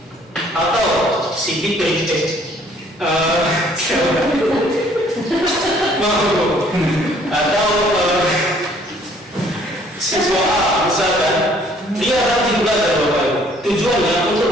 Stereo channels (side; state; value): both; normal; correlation 0.60